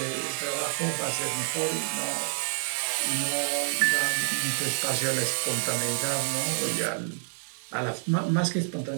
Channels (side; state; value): left; silent; digital silence